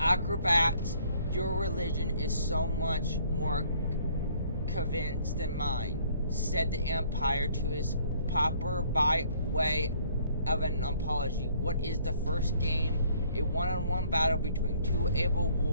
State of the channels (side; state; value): both; inverted; correlation -0.62